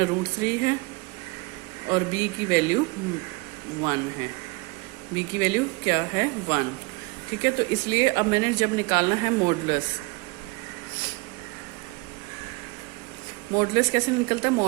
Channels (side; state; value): left; quieter; 26.3 dB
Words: है, और b की वैल्यू 1 है। b की वैल्यू क्या है? 1। ठीक है, तो इसलिए अब मैंने जब निकालना है मॉडुलस, मॉडुलस कैसे निकलता है?